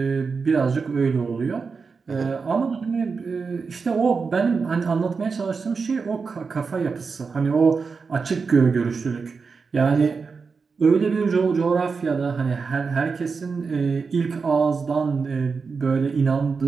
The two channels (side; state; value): left; quieter; 5.0 dB